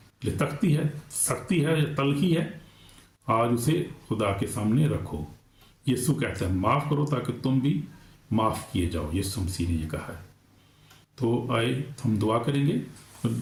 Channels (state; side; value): identical; both; correlation 1.00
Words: लिए तख्ती है, सख्ती है या तलखी है, आज उसे खुदा के सामने रखो। यीशु कहते हैं माफ़ करो ताकि तुम भी माफ़ किए जाओ। यीशु मसीह ने ये कहा है। तो आए हम दुआ करेंगे।